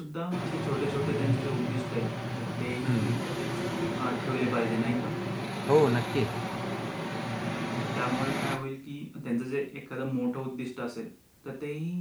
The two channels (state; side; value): identical; both; correlation 1.00